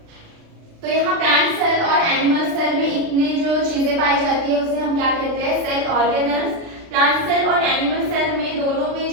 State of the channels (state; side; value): late; left; 36 ms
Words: तो यहाँ प्लांट सेल और एनिमल सेल में इतने जो चीजें पाई जाती है उसे हम क्या कहते हैं, सेल ऑर्गेनल्स। प्लांट सेल और एनिमल सेल में दोनों में